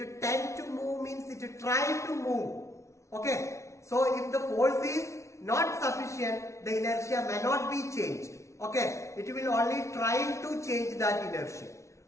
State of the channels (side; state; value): right; late; 0.14 ms